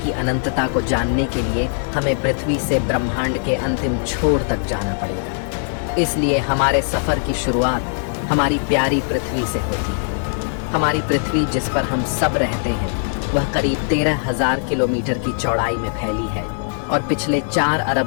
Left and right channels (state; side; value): silent; right; digital silence